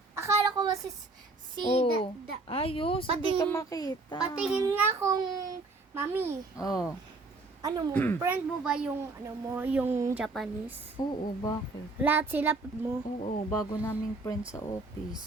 akala ko ba si Oh, da- ayos. Hindi ka Patingin- makita. patingin nga kung mami, Oh. ano mo, friend mo ba yung ano mo, yung Japanese? Oo, bakit? Lahat sila mo. Oo, bago naming friend sa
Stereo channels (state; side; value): quieter; left; 3.4 dB